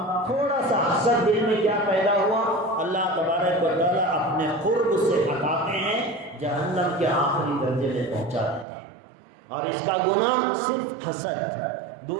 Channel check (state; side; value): drops out; left; at 8.7 s